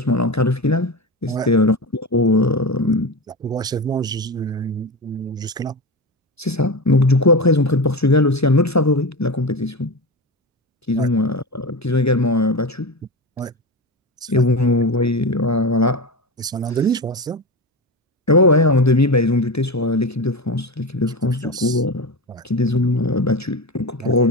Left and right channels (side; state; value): both; normal; correlation 0.22